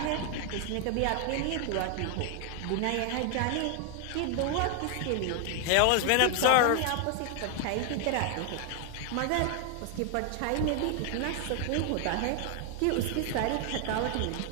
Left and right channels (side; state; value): both; different; correlation 0.00